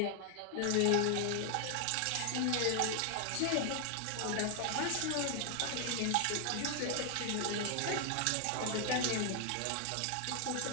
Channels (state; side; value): different; both; correlation 0.00